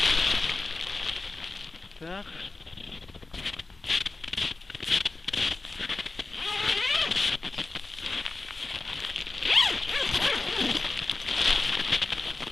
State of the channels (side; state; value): right; quieter; 3.4 dB